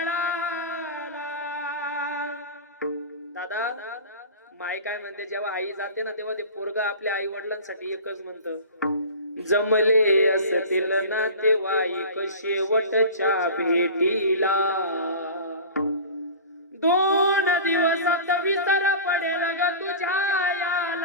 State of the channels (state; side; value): inverted; both; correlation -0.35